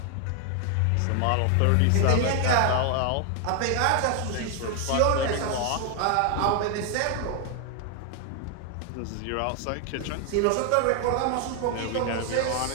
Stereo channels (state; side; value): different; both; correlation 0.00